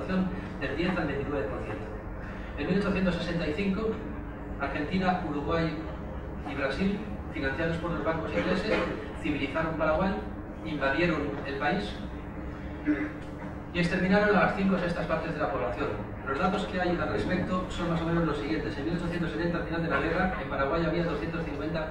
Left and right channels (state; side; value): identical; both; correlation 1.00